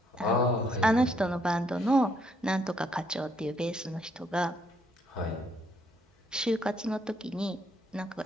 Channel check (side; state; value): both; normal; correlation 0.71